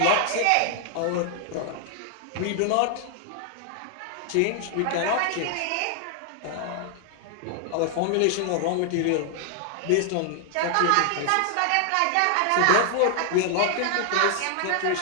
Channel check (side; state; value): both; different; correlation 0.00